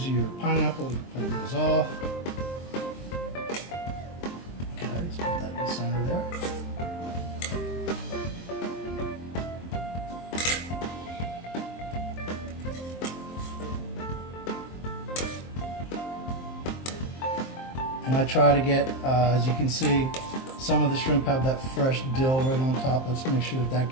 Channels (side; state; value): right; late; 23 ms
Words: of your pineapple, you can pull those off. Okay, let's put that in the center there. And I try to get, as you can see, some of the shrimp have that fresh dill right on top. Let's make sure that